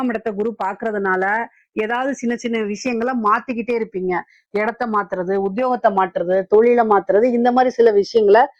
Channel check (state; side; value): identical; both; correlation 1.00